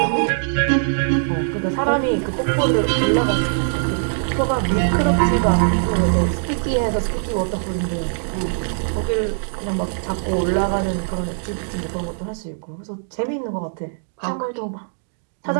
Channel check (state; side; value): silent; left; digital silence